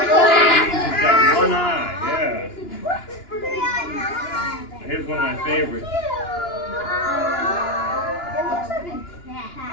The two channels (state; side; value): late; right; 2.9 ms